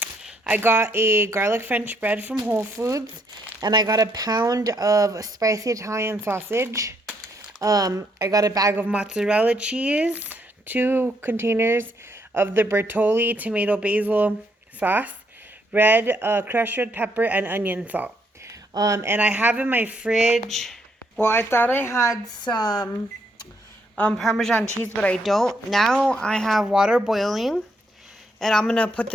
I got a garlic French bread from Whole Foods, and I got a pound of spicy Italian sausage. I got a bag of mozzarella cheese, 2 containers of the Bertolli tomato basil sauce, crushed red pepper, and onion salt. And I have in my fridge, well, I thought I had some Parmesan cheese, but I don't. Now I have water boiling, and I'm going to put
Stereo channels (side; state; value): both; normal; correlation 0.73